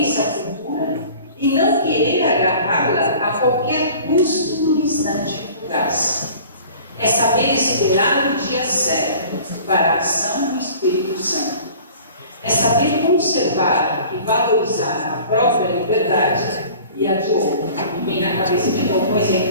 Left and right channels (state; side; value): inverted; both; correlation -0.45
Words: futura e não querer agarrá-la a qualquer custo no instante fugaz. É saber esperar o dia certo para a ação do Espírito Santo. É saber conservar e valorizar a própria liberdade e a de outro. Me vem na cabeça de novo um